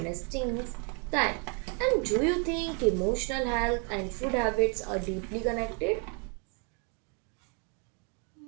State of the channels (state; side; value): quieter; left; 36.6 dB